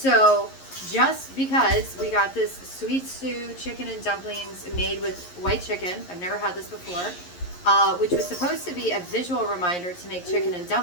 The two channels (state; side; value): late; right; 11 ms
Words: just because we got this sweet stew chicken and dumplings made with white chicken, I've never had this before, which was supposed to be a visual reminder to make chicken and